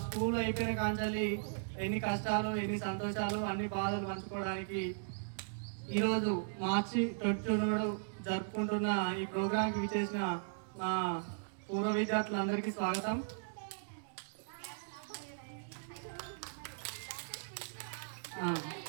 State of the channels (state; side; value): silent; left; digital silence